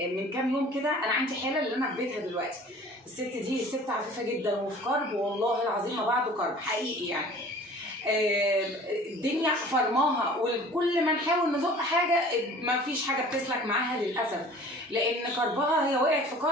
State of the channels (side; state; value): both; normal; correlation 0.47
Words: من كام يوم كده انا عندي حاله اللي انا في بيتها دلوقتي. الست دي ست عفيفه جدا وفي كرب، والله العظيم ما بعده كرب حقيقي يعني. الدنيا فرماها، وكل ما نحاول نزق حاجه ما فيش حاجه بتسلك معاها للاسف، لان كربها هي وقعت في